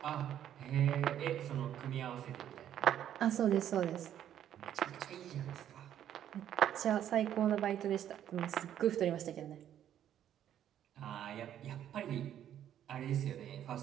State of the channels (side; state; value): left; quieter; 10.6 dB